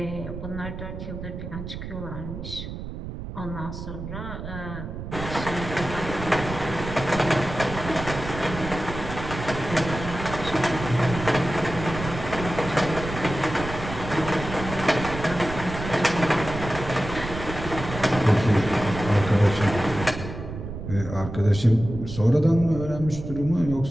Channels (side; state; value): right; noise; rumble, 8 dB below the sound